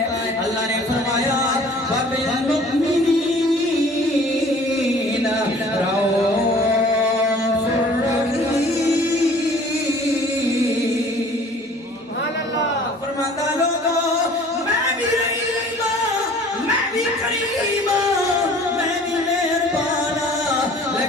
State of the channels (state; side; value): normal; both; correlation 0.50